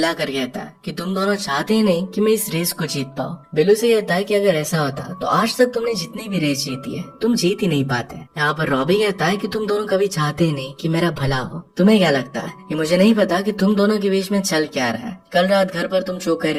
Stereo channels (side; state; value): both; identical; correlation 1.00